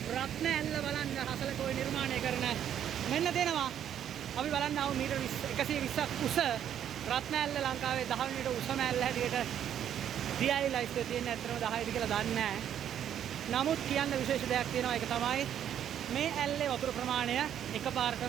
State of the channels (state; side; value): quieter; left; 9.9 dB